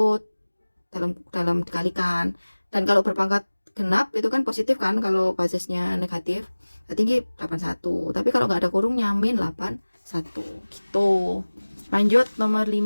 dalam dikalikan. Dan kalau berpangkat genap itu kan positif kan, kalau basisnya negatif. Tinggi 81. Tapi kalau nggak ada kurungnya, min 81 gitu. Lanjut nomor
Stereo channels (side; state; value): both; inverted; correlation -1.00